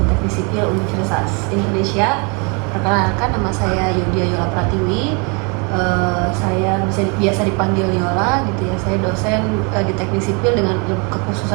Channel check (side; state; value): left; quieter; 32.9 dB